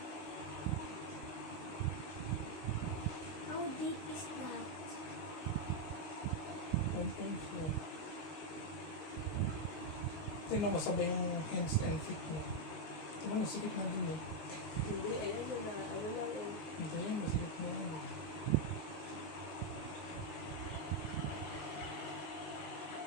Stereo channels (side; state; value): right; late; 19 ms